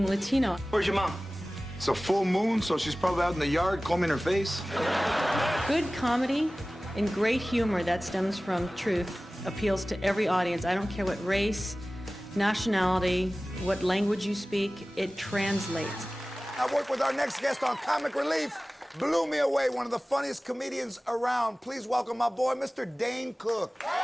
Latino. Where's your mom? It's a full moon, so she's probably out in the yard combing her face. Good comedy and great humor that stems from truth appeals to every audience. I don't care what race, nationality, what language you speak, it translates. I work with our next guest on Comic Relief. Blew me away, one of the funniest comedians around. Please welcome my boy, Mr. Dane Cook.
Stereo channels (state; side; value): normal; both; correlation 0.97